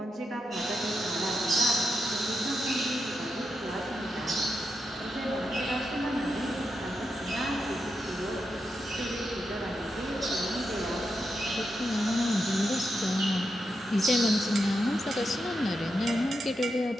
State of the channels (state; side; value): normal; both; correlation 0.86